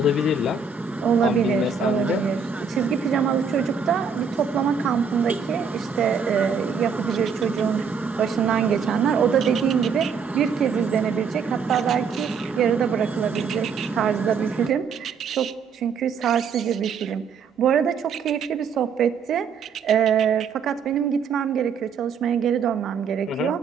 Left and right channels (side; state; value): left; quieter; 5.9 dB